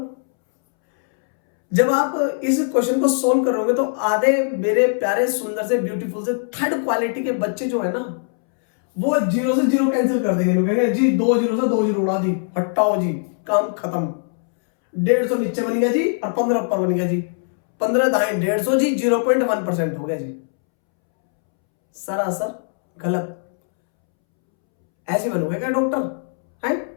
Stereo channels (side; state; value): right; silent; 65 dB below the other